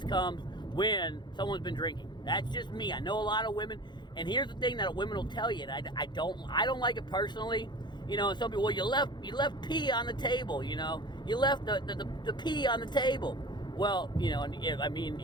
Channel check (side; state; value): right; late; 0.21 ms